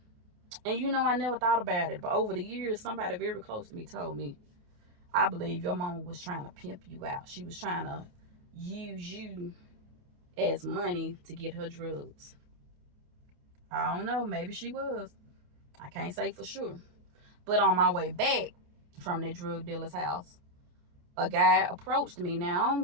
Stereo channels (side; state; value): left; late; 28 ms